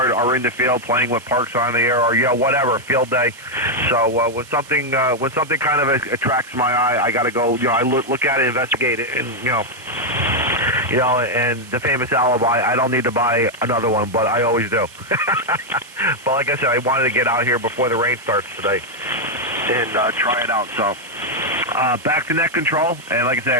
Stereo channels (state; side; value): noise; right; hiss, 21 dB below the sound